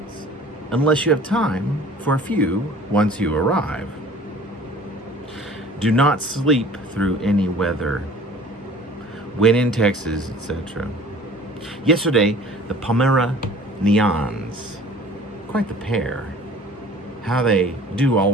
unless you have time for a few once you arrive. Do not sleep through any weather. When in Texas, etc. Yesterday, the Pomeranians. Quite the pair. How they do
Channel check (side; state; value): both; normal; correlation 0.47